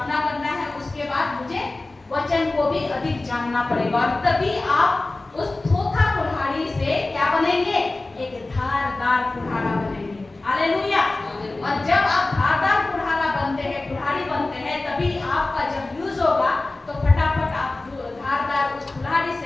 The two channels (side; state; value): right; quieter; 3.1 dB